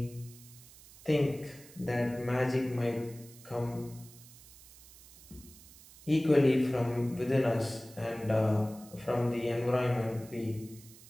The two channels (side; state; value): right; noise; hiss, 21 dB below the sound